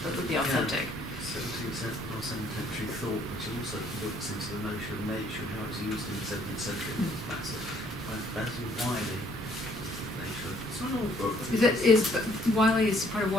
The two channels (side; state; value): both; normal; correlation 0.64